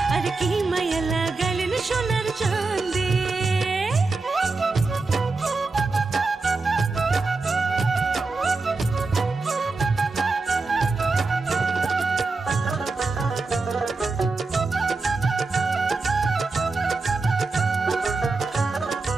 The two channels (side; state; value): left; quieter; 3.8 dB